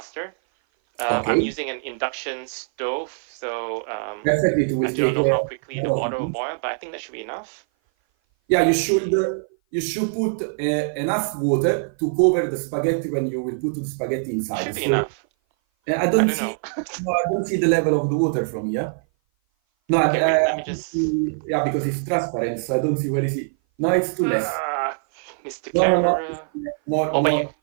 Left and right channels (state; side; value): silent; left; 57 dB below the other